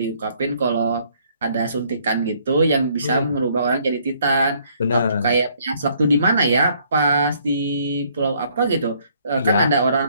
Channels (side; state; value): both; inverted; correlation -0.65